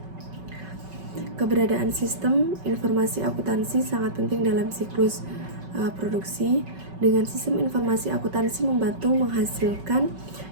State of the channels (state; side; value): late; left; 5.3 ms